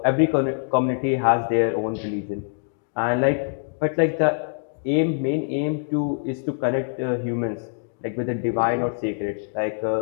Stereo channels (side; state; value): right; silent; digital silence